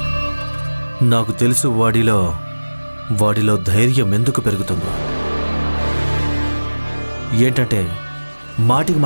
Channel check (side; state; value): both; inverted; correlation -1.00